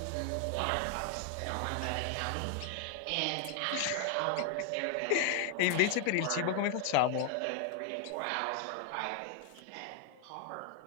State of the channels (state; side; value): different; both; correlation 0.00